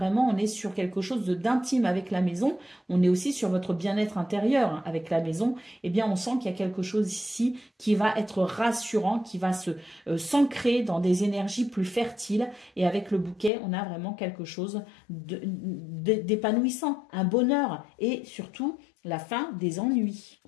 on est sur quelque chose d'intime avec la maison. On est aussi sur votre bien-être intérieur hein, avec la maison. Eh bien, on sent qu'il y a quelque chose ici qui va être rassurant, qui va s'ancrer dans des énergies plus fertiles. Et avec le bouquet, on a vraiment quelque chose d'épanouissant, un bonheur et surtout la fin des ennuis.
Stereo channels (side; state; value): right; drops out; at 13.5 s